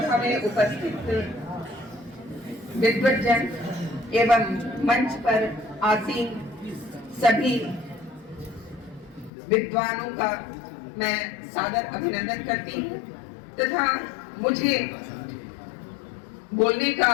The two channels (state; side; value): drops out; right; at 9.3 s